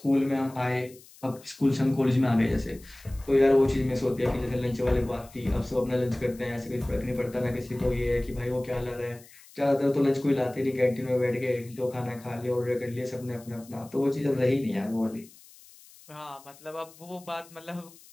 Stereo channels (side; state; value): left; noise; hiss, 23 dB below the sound